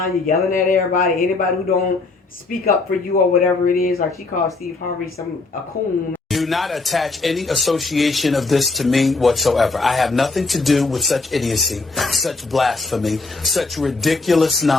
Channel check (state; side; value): quieter; right; 3.7 dB